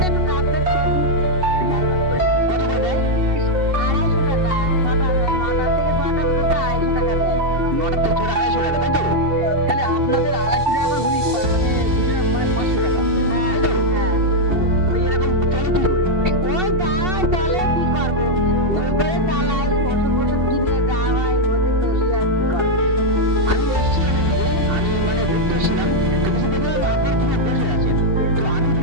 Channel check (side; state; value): left; late; 2.7 ms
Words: একটু কাজ টাজ করি। কত করে দেয়? 250 টাকা। 9টা থেকে 6টা পর্যন্ত 250 টাকা দেয়। 9টা থেকে 6টা 250 টাকা, তাই তো? তাহলে আপনাদের 250 টাকা করে হলি মানে দুজনের মানে 500 টাকা, হ্যাঁ তাই তো? হ্যাঁ। তো এরকম চলে কি করে? ওই যাওয়াই চলে, কি করবো, ওই করে চালাই, ওষুধ বষুধ কিনে যাওয়া হয়, ওতে চলি আর কি করবো। আমি এসেছিলাম এদিকে, আমি মানে ঘুরতে এসেছিলাম, তো কিছু দেখলাম আপনারা দুজন বসে আছেন। তো আমি